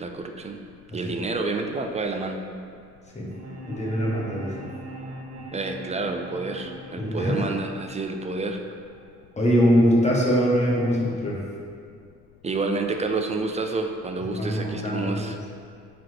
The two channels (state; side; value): noise; left; rumble, 27 dB below the sound